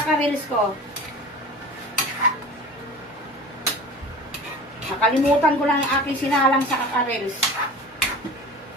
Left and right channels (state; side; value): normal; both; correlation 0.38